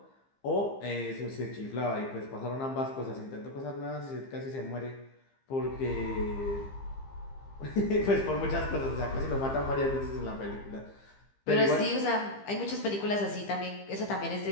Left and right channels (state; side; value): late; right; 15 ms